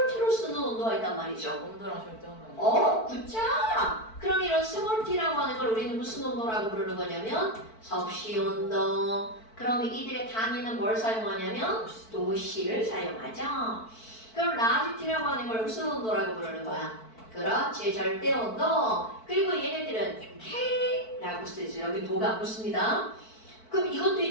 T로 쓰는 온도가 있단 말이죠. 온도랑 절대 온도. 굿자. 그럼 이런 스몰 T라고 하는 걸 우리는 무슨 온도라고 부르는 거냐면 섭씨 온도. 그러면 이들의 단위는 뭘 사용하냐면 도시를 사용하죠. 그럼 라지 T라고 하는 걸 무슨 온도라고 부르는 거야? 그렇지, 절대 온도. 그리고 얘네들은 K라고 쓰죠. 여기 도가 안 붙습니다. 그럼 이것도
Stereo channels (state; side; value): late; right; 4.5 ms